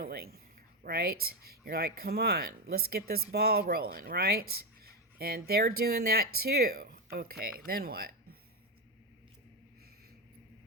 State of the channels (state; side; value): normal; both; correlation 0.10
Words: right? You're like, come on, let's get this ball rolling, right? And they're doing that too. Okay, then what?